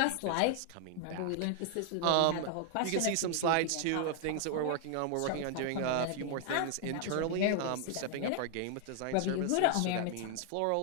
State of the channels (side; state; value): both; different; correlation 0.00